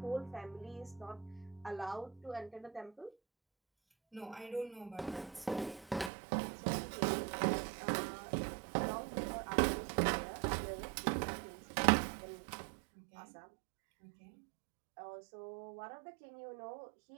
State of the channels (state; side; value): drops out; left; at 6.1 s